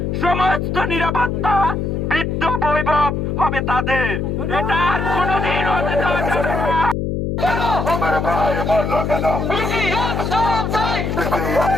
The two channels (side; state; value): left; noise; hum, 1 dB below the sound